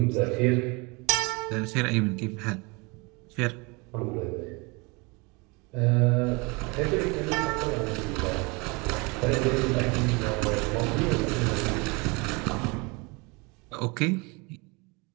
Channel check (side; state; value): left; quieter; 28.1 dB